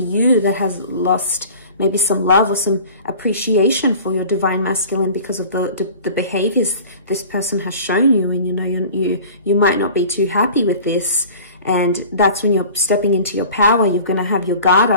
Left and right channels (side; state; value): both; inverted; correlation -0.43